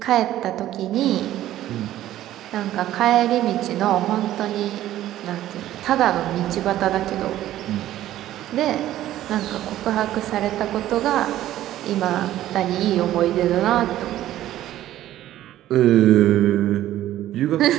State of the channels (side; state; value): left; quieter; 13.5 dB